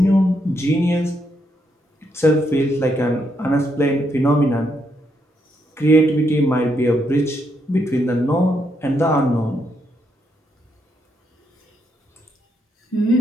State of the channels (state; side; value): normal; both; correlation 0.78